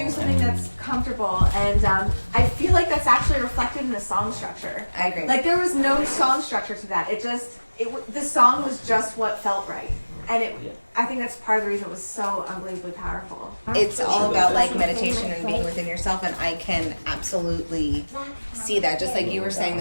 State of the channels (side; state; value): both; inverted; correlation -1.00